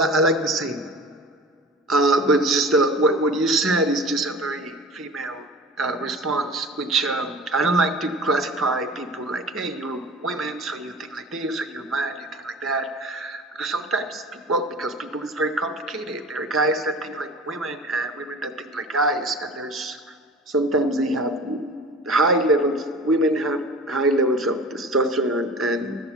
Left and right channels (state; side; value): normal; both; correlation 0.39